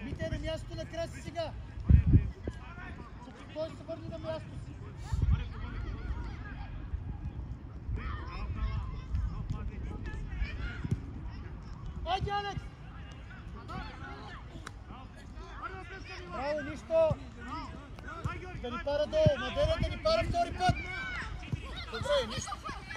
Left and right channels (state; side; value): identical; both; correlation 1.00